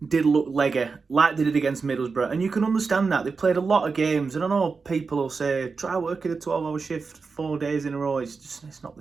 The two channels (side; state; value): left; quieter; 4.7 dB